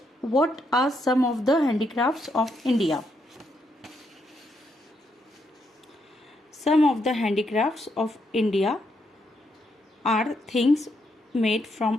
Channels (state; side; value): normal; both; correlation 0.78